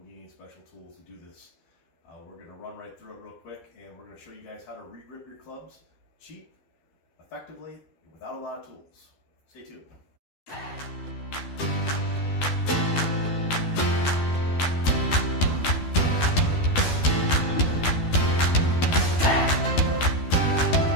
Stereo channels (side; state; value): right; late; 12 ms